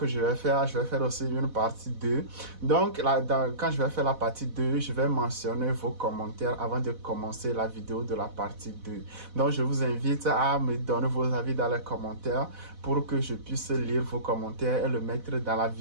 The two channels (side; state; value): left; late; 4.1 ms